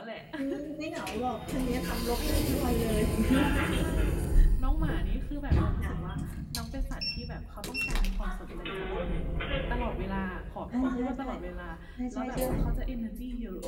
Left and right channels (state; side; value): identical; both; correlation 1.00